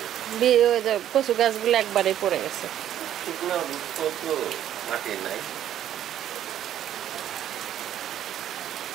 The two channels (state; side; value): quieter; left; 11.1 dB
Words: কচু গাছগুলো একবারে পড়ে গেছে।